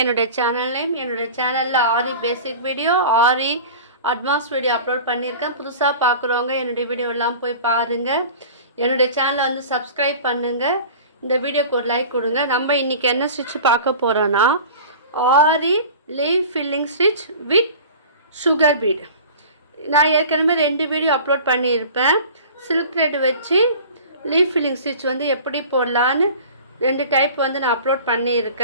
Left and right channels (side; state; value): both; inverted; correlation -0.40